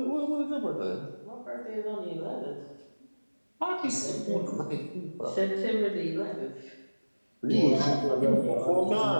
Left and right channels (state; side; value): inverted; both; correlation -1.00